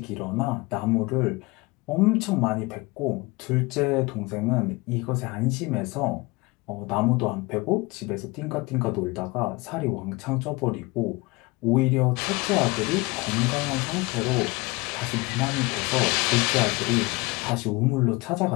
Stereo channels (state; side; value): quieter; right; 24.2 dB